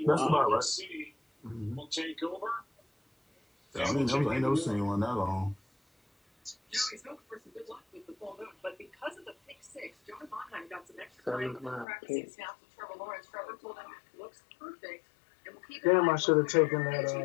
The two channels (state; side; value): drops out; right; at 11.9 s